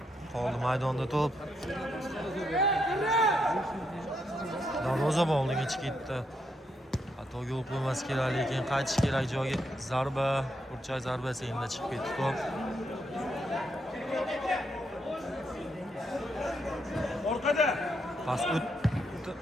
Qoldi maydonda to'p. Darvozabon oldiga chiqib ketdi. Xato yo'l qo'ymas kerak, lekin qaytish kerak joyga. Zarba, burchak zarbasi endi chiqib ketdi to'p. Orqada. Pas o'tdi.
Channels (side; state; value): both; normal; correlation 0.78